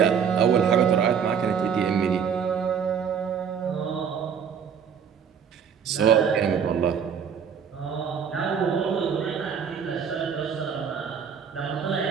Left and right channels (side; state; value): left; quieter; 7.2 dB